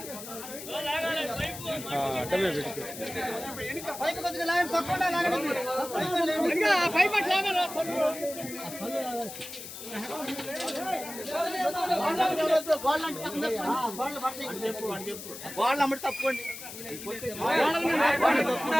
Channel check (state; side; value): noise; left; hiss, 11 dB below the sound